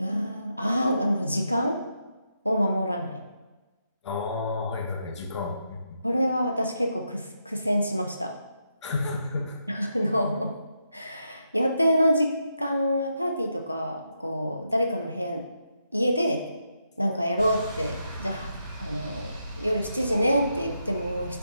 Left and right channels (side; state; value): both; inverted; correlation -0.82